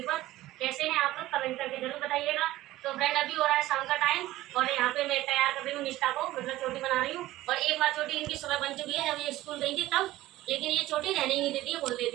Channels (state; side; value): quieter; left; 16.3 dB